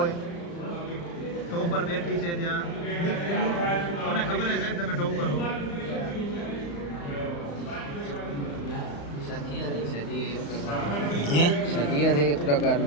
ટોપર બેઠી છે ત્યાં મને ખબર છે સાહેબ તમે ટોપર હો સદીય છે એક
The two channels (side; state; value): right; late; 35 ms